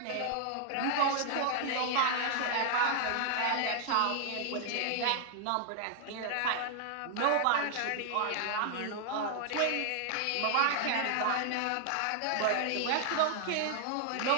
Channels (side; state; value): both; different; correlation 0.00